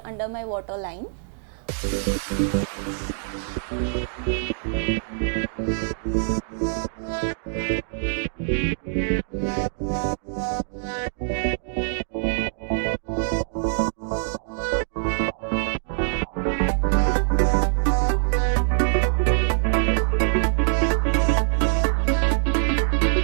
under my waterline.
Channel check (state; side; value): silent; left; digital silence